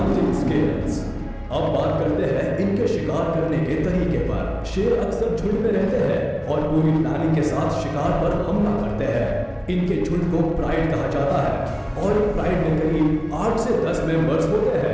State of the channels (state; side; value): identical; both; correlation 1.00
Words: skills. अब बात करते हैं इनके शिकार करने के तरीके पर। शेर अक्सर झुंड में रहते हैं और पूरी प्लानिंग के साथ शिकार पर हमला करते हैं। इनके झुंड को प्राइड कहा जाता है और प्राइड में करीब 8 से 10 मेंबर्स होते